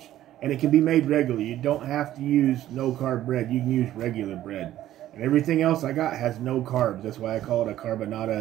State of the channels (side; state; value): left; quieter; 13.2 dB